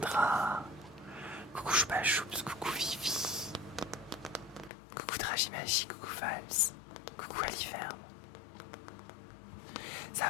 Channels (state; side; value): drops out; right; at 4.7 s